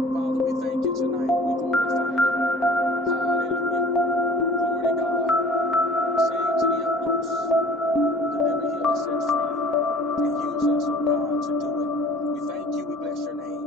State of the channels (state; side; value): normal; both; correlation 0.48